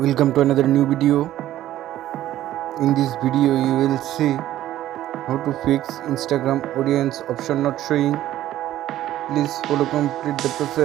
to another new video. In this video you will see how to fix Instagram audience option not showing. Please follow complete the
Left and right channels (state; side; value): quieter; left; 13.5 dB